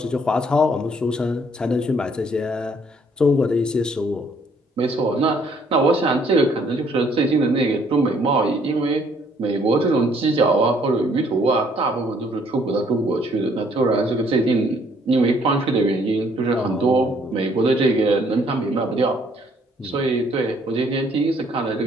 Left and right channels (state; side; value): normal; both; correlation 0.64